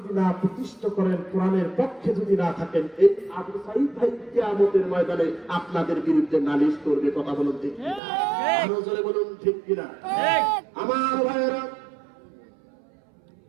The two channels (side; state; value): left; drops out; at 8.0 s